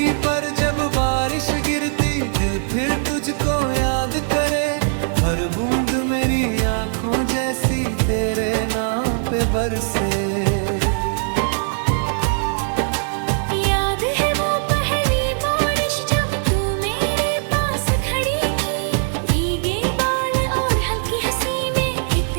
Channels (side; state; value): left; silent; 65 dB below the other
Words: पर जब बारिश गिरती दिल फिर तुझको याद करे। हर बूंद मेरी आंखों जैसी तेरे नाम पे बरसे। याद है वो पहली बारिश जब तू मेरे पास खड़ी थी। भीगे बाल और हल्की हंसी में